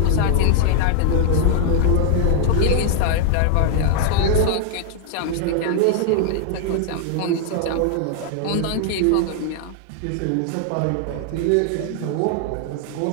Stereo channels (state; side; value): different; both; correlation 0.00